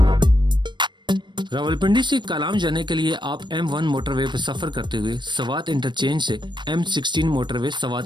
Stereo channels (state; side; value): late; left; 0.22 ms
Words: रावलपिंडी से कालाम जाने के लिए आप M1 मोटरवे पर सफर करते हुए सवात इंटरचेंज से M16 मोटरवे